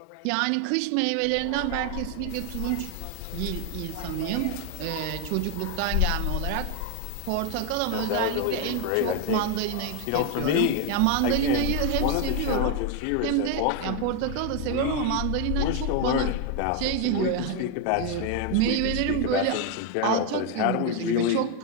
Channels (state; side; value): different; both; correlation 0.01